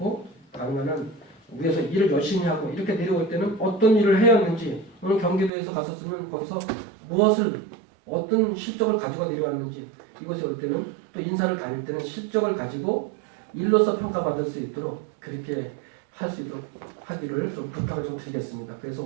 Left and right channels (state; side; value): drops out; left; at 5.5 s